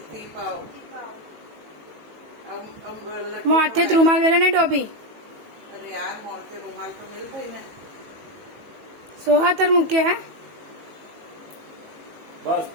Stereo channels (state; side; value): late; left; 18 ms